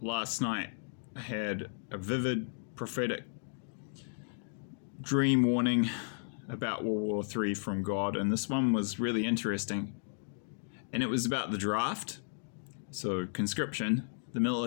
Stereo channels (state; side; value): silent; right; digital silence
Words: night I had a vivid prophetic dream warning about World War III from God, and this one was really interesting. And it was about the draft, so conscription, the